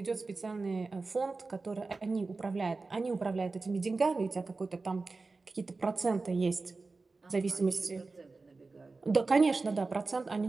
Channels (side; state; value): left; quieter; 3.8 dB